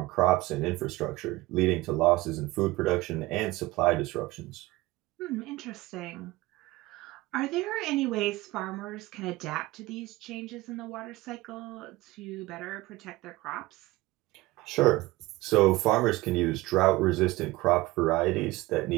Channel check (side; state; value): left; quieter; 19.6 dB